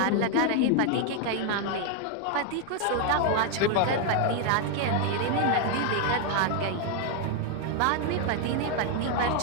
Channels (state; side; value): different; both; correlation 0.01